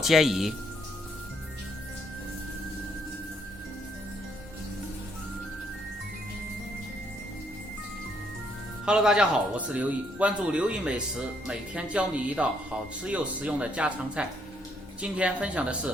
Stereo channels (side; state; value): both; normal; correlation 0.71